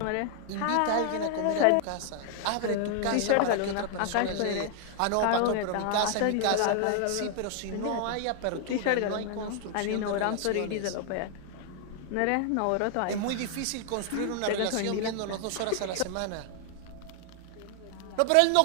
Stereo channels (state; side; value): different; both; correlation 0.00